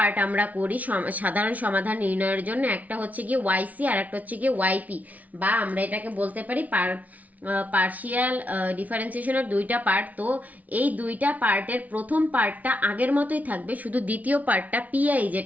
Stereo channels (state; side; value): late; left; 0.073 ms